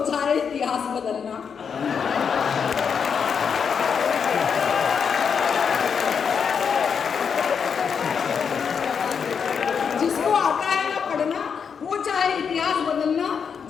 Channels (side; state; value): right; quieter; 6.6 dB